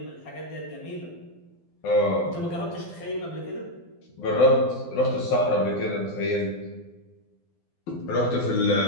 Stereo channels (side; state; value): right; late; 12 ms